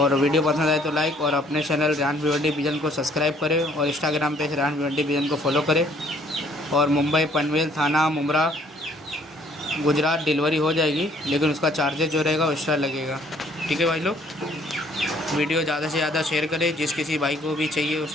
वीडियो पसंद आए तो लाइक, और अपने चैनल रैन भिवंडी विजन को सब्सक्राइब करें, और इंस्टाग्राम पे रैन भिवंडी विजन को फॉलो करें। और मुंबई पनवेल थाना मुमरा गुजरात डिलीवरी हो जाएगी, लेकिन उसका चार्जेस जो रहेगा वो एक्स्ट्रा लगेगा। ठीक है भाई लोग, वीडियो ज़्यादा से ज़्यादा शेयर करें, जिस किसी भाई को भी चाहिए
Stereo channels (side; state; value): both; normal; correlation 0.61